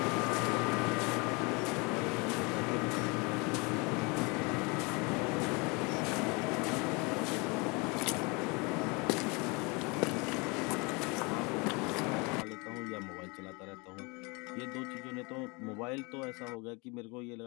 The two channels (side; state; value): right; quieter; 28.5 dB